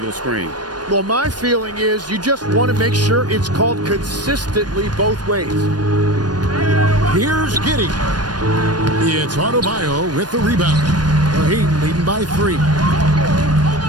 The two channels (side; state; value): left; late; 0.69 ms